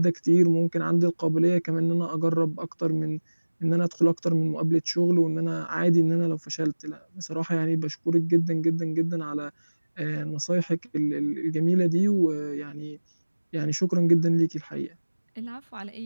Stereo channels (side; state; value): both; inverted; correlation -1.00